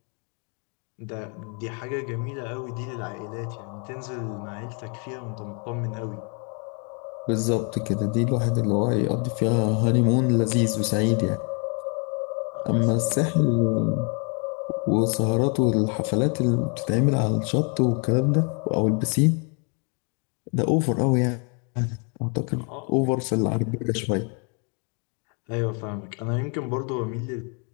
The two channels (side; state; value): right; quieter; 37.3 dB